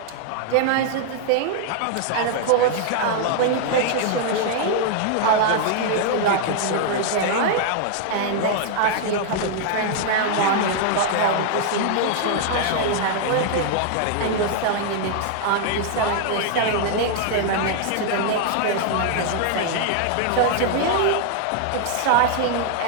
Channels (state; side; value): different; both; correlation -0.01